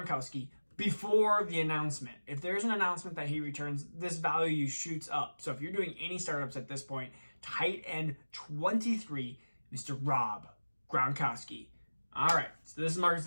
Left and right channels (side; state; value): both; inverted; correlation -1.00